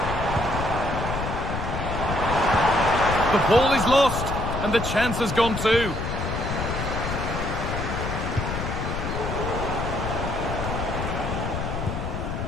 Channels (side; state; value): left; noise; rumble, 4 dB below the sound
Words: The ball is lost, and the chance has gone too.